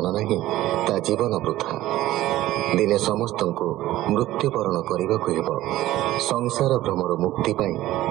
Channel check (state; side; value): quieter; left; 15.4 dB